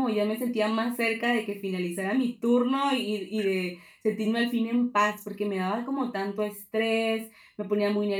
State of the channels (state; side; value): identical; both; correlation 1.00